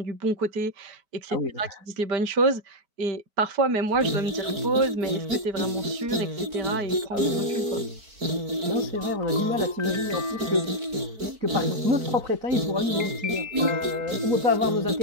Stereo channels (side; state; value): left; late; 4.5 ms